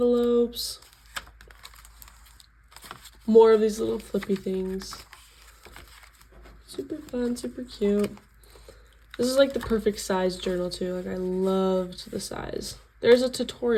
More of these little flippy things. Super fun, super cute. This is like the perfect size journal too. Like I loved the size. There's a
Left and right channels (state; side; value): identical; both; correlation 1.00